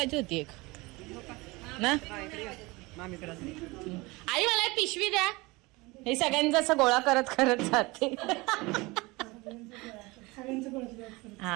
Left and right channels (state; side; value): quieter; left; 23.3 dB